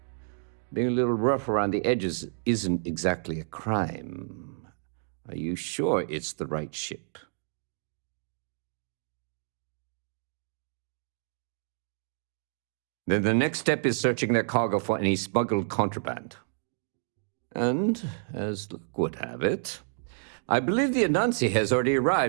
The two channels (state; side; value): silent; left; digital silence